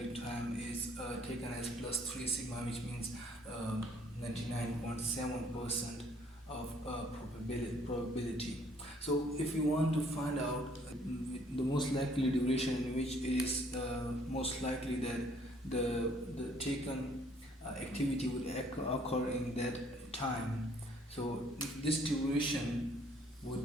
time is taken as plus 3 sigma, which means 99.7% of probability. So if you want to find out the most likely duration in which it is most likely that the taken activity would occur in that time, so this duration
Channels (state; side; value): normal; both; correlation 0.62